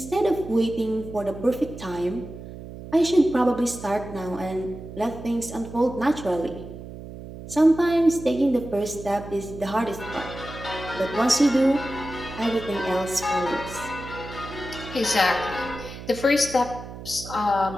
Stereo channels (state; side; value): noise; right; hum, 12 dB below the sound